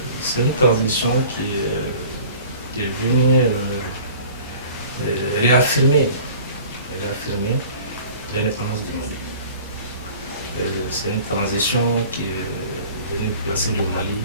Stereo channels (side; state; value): both; inverted; correlation -0.45